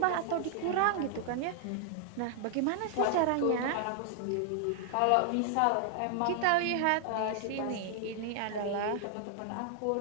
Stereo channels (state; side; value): different; both; correlation 0.00